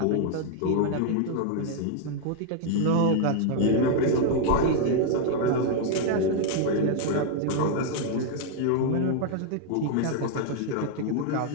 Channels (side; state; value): both; different; correlation 0.00